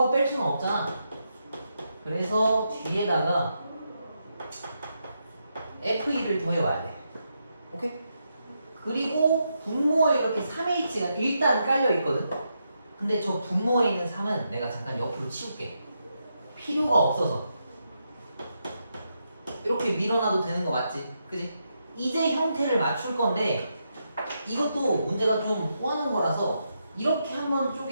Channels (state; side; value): inverted; both; correlation -0.83